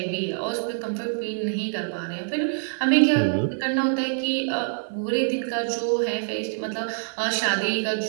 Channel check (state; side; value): silent; left; 59 dB below the other